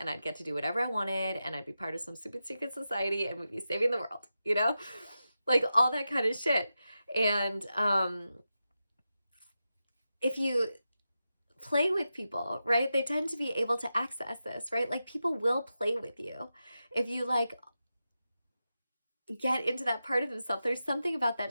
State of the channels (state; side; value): inverted; both; correlation -0.90